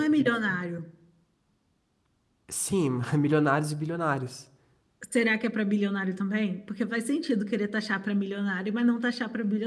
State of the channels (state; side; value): identical; both; correlation 1.00